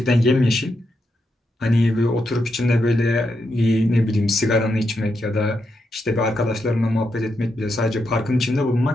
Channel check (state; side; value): normal; both; correlation 0.83